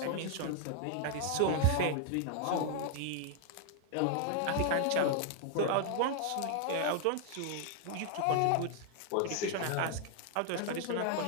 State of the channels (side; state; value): both; different; correlation 0.00